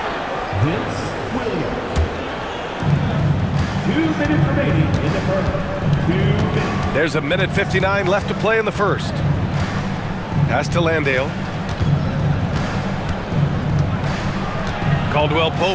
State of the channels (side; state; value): both; identical; correlation 1.00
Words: Vince Williams. 2 minutes remaining in the first. 2 minutes. There's 1:59 left to play in the first. Pass to Landale. Caldwell